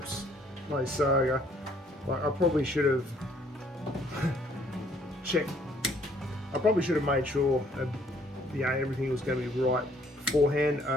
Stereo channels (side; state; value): both; normal; correlation 0.63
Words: my saga, like I probably should have checked. I probably should have made sure everything was going to be right beforehand.